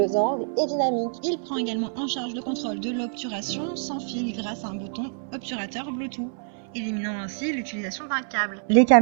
angles et dynamiques. Il prend également en charge le contrôle de l'obturation sans fil grâce à un bouton obturateur Bluetooth, éliminant ainsi l'utilisation d'un câble. Les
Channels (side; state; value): left; silent; 61 dB below the other